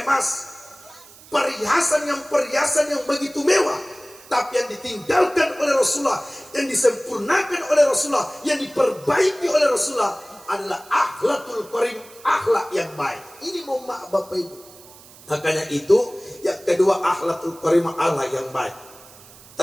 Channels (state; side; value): noise; right; hiss, 22 dB below the sound